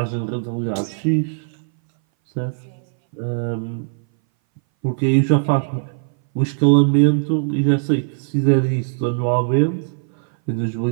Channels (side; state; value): left; silent; 61 dB below the other